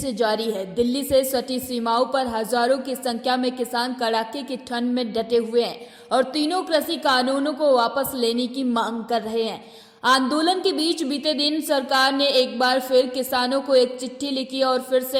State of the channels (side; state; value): both; identical; correlation 1.00